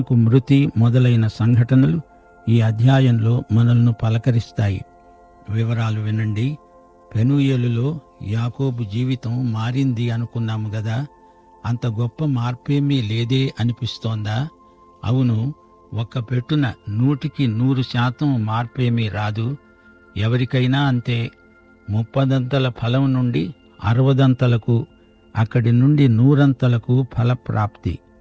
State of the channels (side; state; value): both; identical; correlation 1.00